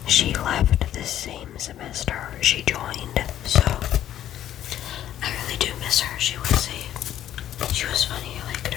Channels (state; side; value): quieter; right; 11.7 dB